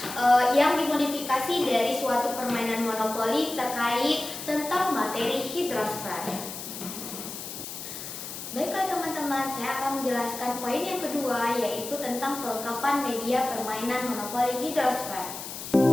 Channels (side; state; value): left; noise; hiss, 9 dB below the sound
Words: yang dimodifikasi dari suatu permainan monopoli terkait tentang materi hidrosfer. Baiklah teman-teman, saya akan menjelaskan poin yang kedua yaitu tentang kelengkapan media permainan monopoli hidrosfer.